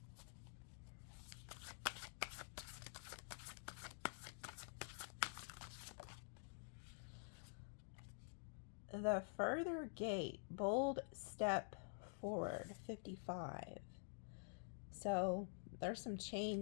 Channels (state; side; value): silent; right; digital silence